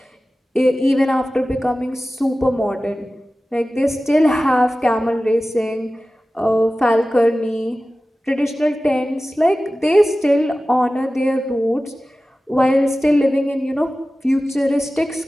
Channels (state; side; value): normal; both; correlation 0.96